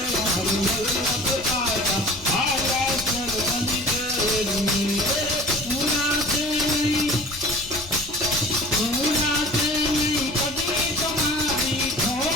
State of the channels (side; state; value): left; noise; rumble, 17 dB below the sound